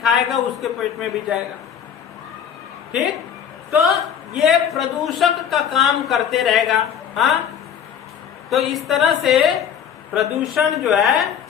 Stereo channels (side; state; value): right; quieter; 8.4 dB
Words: उसके पेट में भी जाएगा, ठीक। तो ये प्रदूषक का काम करते रहेगा। हाँ, तो इस तरह से प्रदूषण जो है